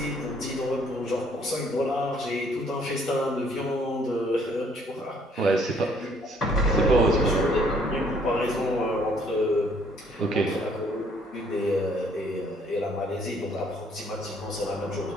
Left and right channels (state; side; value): normal; both; correlation 0.63